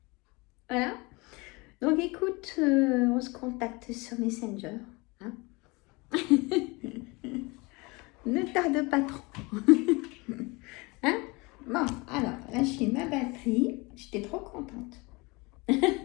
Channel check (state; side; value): quieter; right; 25.7 dB